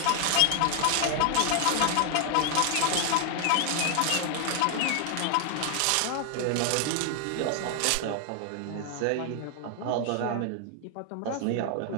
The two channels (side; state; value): both; different; correlation 0.00